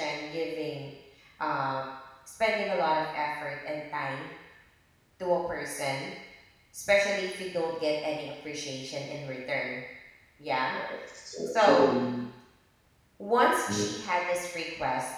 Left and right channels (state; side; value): identical; both; correlation 1.00